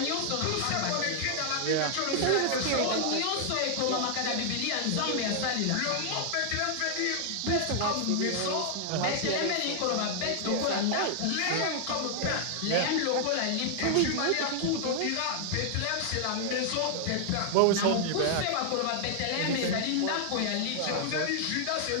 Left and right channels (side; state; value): both; different; correlation 0.00